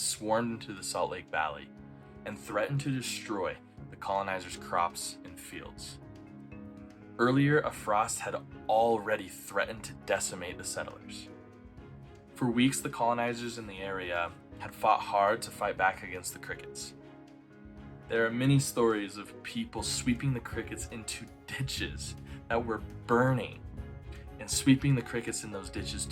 into the Salt Lake Valley and threatened to destroy the colonizers' crops and fields. Earlier, a frost had already threatened to decimate the settlers. For weeks, the colonizers in the area had fought hard to fight back against the crickets. There are many stories of people sweeping the crickets into ditches that were burning and sweeping the crickets in those ditches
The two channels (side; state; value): both; identical; correlation 1.00